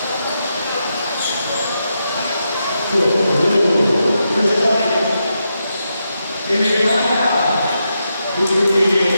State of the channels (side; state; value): both; inverted; correlation -0.85